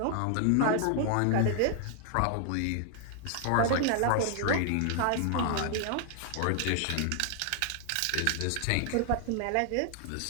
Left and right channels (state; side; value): different; both; correlation 0.00